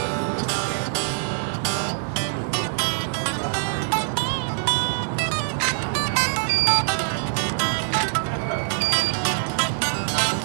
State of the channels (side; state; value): left; silent; digital silence